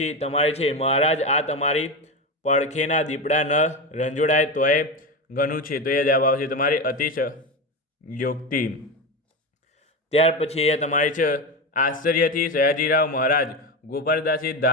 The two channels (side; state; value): both; normal; correlation 0.19